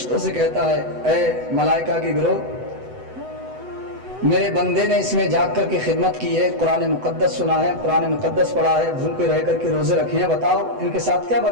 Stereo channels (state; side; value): late; left; 7.9 ms